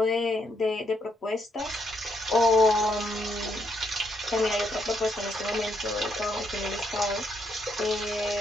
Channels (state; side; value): normal; both; correlation 0.76